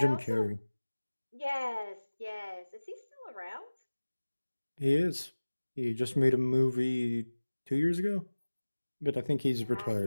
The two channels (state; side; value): inverted; both; correlation -1.00